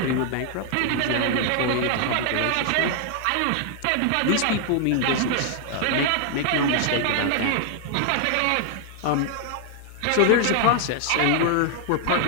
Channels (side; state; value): both; different; correlation 0.00